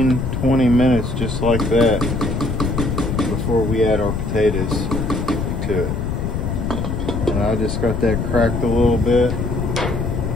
20 minutes just like that before we add our potatoes to it. And I just got that cracked a little bit.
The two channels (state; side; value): noise; left; rumble, 2 dB below the sound